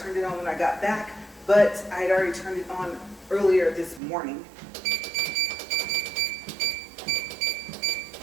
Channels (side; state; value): left; drops out; at 4.0 s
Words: it on when I got back, but I had already turned it on earlier this morning.